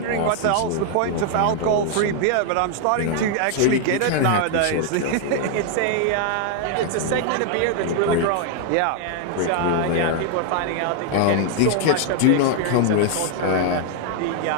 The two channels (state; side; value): different; both; correlation 0.00